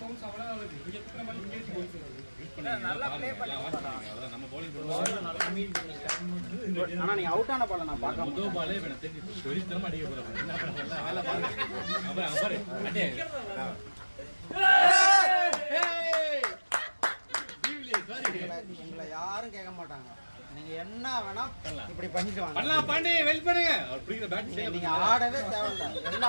பவுன்ஸ் அவ்வளோ வருது இங்க குத்துன பால் இங்கே போச்சு நல்லா ப்ளே பண்ணி நம்ம bowling ஆனா நீங்க அவுட் ஆன பால நான் பார்க்க முதல் பாலே வேணும் தெரிஞ்சு வெறித்தனமா அடிக்க போறாங்க. என்ன பண்ணல வேலை பாருங்க. அப்புறம் பாரு அடே எங்களை யாரும் கேட்க மாட்டாங்க. நீங்க என்ன வேணா இப்படி பண்ணிட்டு வாங்க. பண்ணலாம் பாண்டி வெல் பண்ணுங்க. அவர் பிடிக்கிற பேட் நீங்க ஆடவே தேவையில்லை. எல்லா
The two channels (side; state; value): both; inverted; correlation -1.00